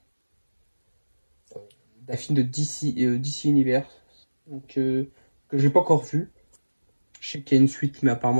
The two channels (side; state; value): both; inverted; correlation -1.00